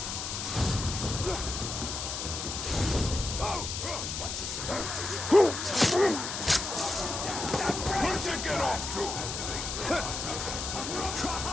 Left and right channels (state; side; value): noise; left; hiss, 4 dB below the sound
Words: What's this? Where'd you get off to?